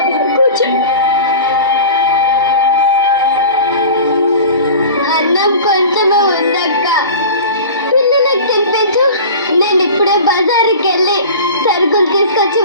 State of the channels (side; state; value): both; inverted; correlation -0.37